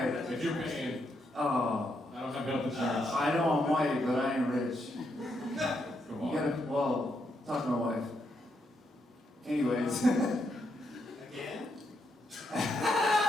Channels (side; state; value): both; normal; correlation 0.79